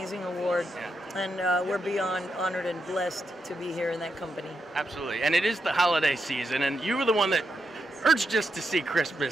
award. And we're beyond honored and blessed to be here in that company. Absolutely. And it is the holiday season, and you were the one that urged us to see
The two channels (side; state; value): both; normal; correlation 0.84